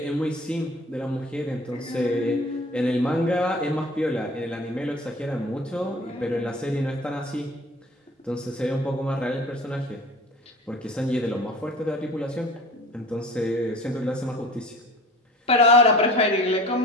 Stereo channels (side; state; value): both; normal; correlation 0.43